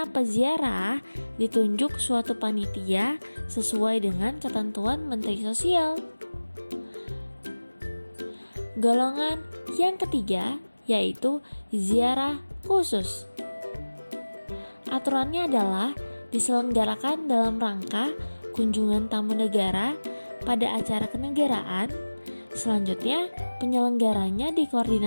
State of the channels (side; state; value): both; inverted; correlation -1.00